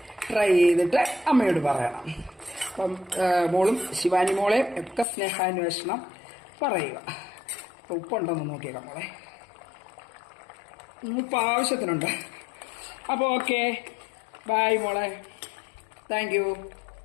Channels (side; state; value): right; drops out; at 5.1 s